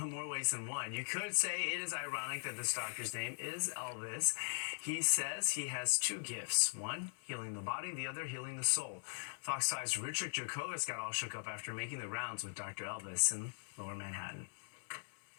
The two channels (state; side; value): silent; right; 51 dB below the other